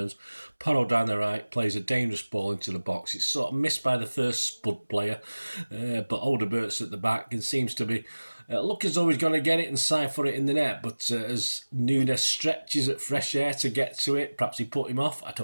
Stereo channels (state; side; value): inverted; both; correlation -1.00